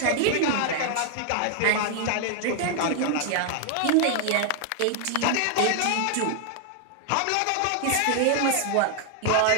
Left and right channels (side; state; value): both; different; correlation 0.00